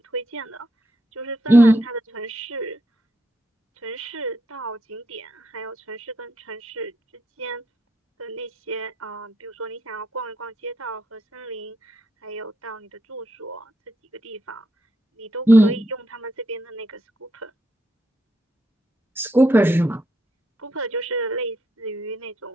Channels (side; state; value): both; normal; correlation 0.80